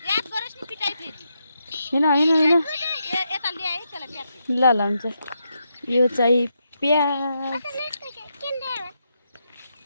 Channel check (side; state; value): both; inverted; correlation -0.82